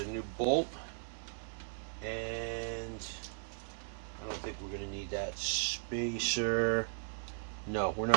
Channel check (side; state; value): left; silent; 53 dB below the other